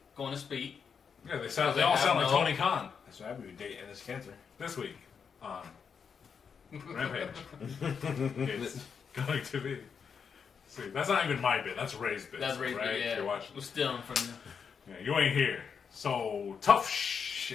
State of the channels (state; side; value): quieter; right; 6.5 dB